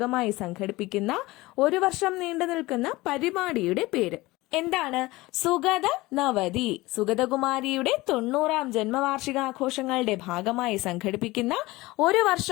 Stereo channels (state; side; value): quieter; right; 20.1 dB